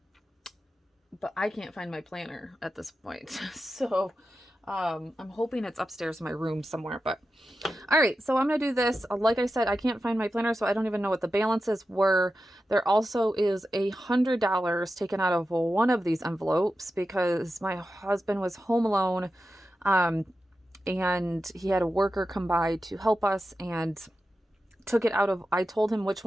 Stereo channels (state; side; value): normal; both; correlation 0.91